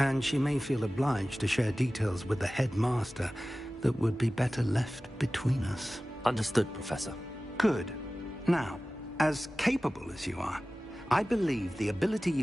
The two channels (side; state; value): both; normal; correlation 0.97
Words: she may feel obliged to share details with the headmaster that would be better left between us. Understood, Professor. Good. Now, as capable as you are, I believe the ability